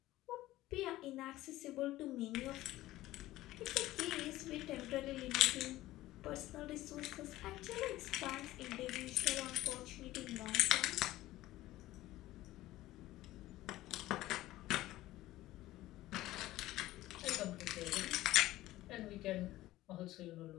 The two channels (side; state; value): right; quieter; 16.3 dB